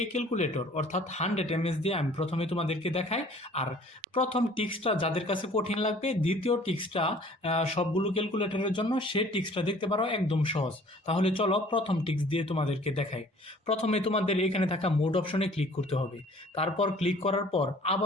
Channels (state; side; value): normal; both; correlation 0.52